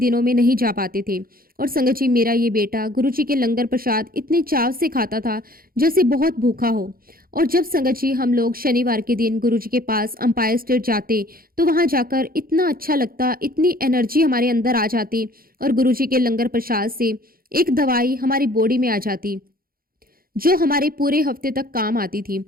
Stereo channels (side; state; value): left; late; 0.42 ms